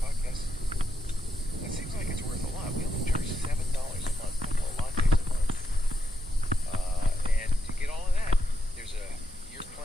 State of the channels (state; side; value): normal; both; correlation 0.83